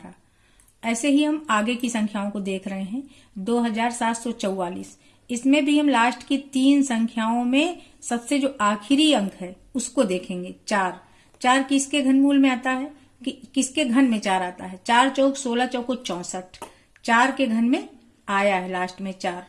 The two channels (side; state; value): both; identical; correlation 1.00